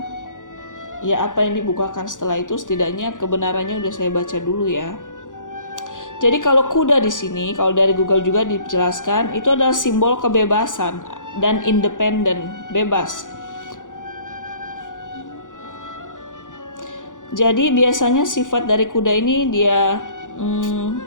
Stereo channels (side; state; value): right; late; 0.87 ms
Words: ya apa yang dibukakan setelah itu setidaknya kebenarannya udah saya baca dulu ya. Jadi kalau kuda di sini, kalau dari Google juga dijelaskan, itu adalah simbol kebebasan dan independen, bebas. Jadi biasanya sifat dari kuda ini dia